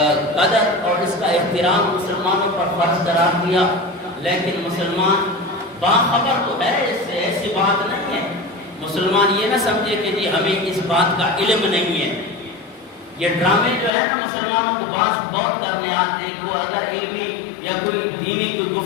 قدر اور اس کا احترام مسلمانوں پر فرض قرار دیا، لیکن مسلمان باخبر تو ہے، اس سے ایسی بات نہیں ہے۔ مسلمان یہ نہ سمجھے کہ جی ہمیں اس بات کا علم نہیں ہے۔ یہ ڈرامے جو ہے نا مسلمانوں کو بہت کرنے آتے ہیں، وہ اگر علمی یا کوئی دینی کوئی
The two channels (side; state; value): right; drops out; at 13.9 s